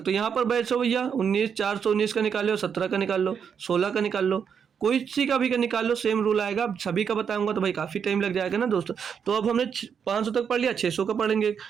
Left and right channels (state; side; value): quieter; left; 7.2 dB